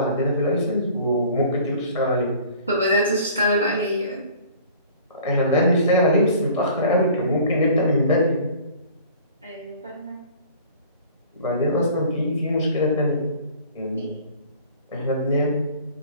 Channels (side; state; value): both; inverted; correlation -0.48